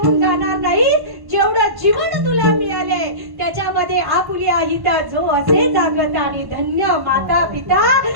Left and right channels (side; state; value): left; late; 1.1 ms